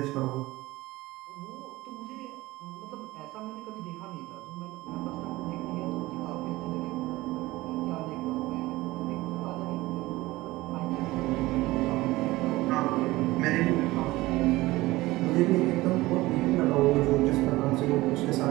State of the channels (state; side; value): quieter; left; 19.1 dB